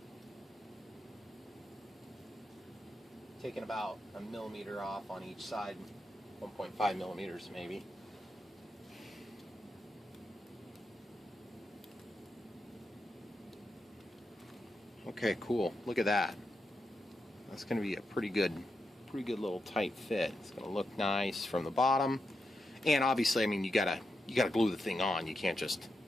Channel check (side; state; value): both; normal; correlation 0.86